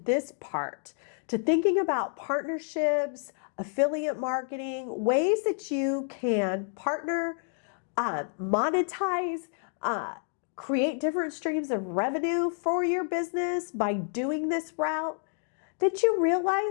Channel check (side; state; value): right; silent; 58 dB below the other